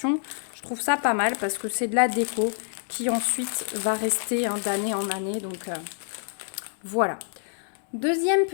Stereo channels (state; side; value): silent; right; digital silence